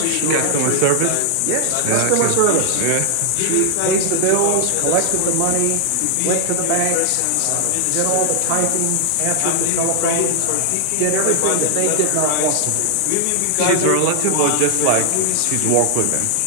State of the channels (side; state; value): both; different; correlation 0.00